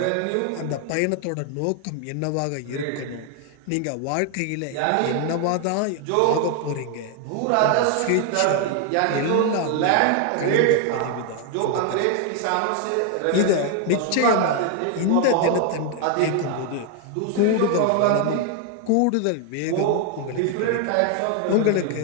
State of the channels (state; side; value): different; both; correlation 0.00